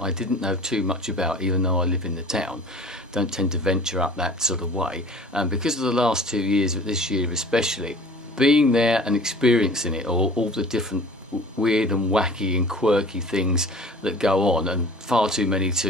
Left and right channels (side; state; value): both; normal; correlation 0.45